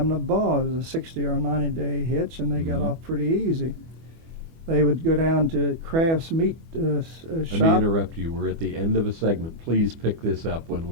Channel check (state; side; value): late; left; 24 ms